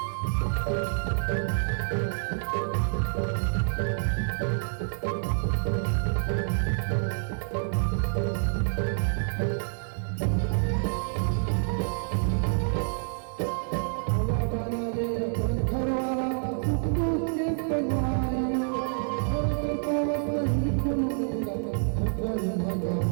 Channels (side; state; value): left; silent; 60 dB below the other